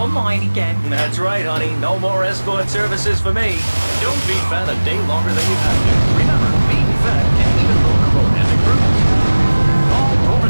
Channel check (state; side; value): inverted; both; correlation -1.00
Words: mine again. That's right, honey. No more escort services for me. Don't be fat a day longer than you have to. Remember, being fat can even lower romantic cruise. Call